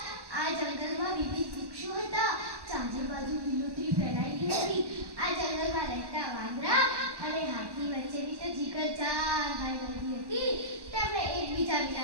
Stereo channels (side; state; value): left; late; 1.1 ms